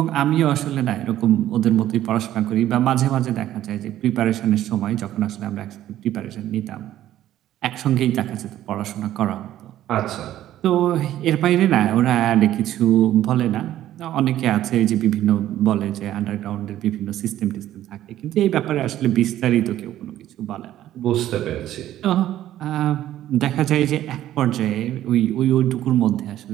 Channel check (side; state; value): left; quieter; 12.9 dB